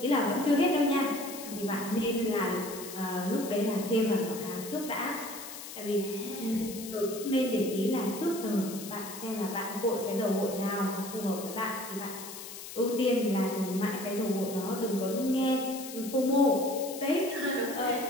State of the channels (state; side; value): noise; left; hiss, 11 dB below the sound